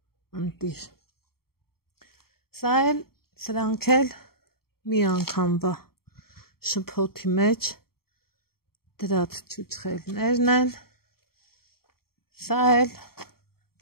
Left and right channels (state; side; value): late; right; 0.94 ms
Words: ընտիր։ Սա էլ սրանք էլ մի անգամվա շփոթի մեջ դրած չուչխելներն են, սա էլ,